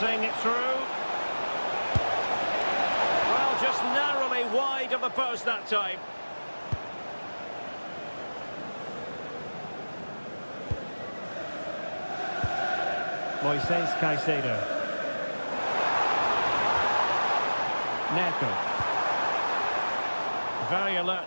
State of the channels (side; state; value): both; inverted; correlation -1.00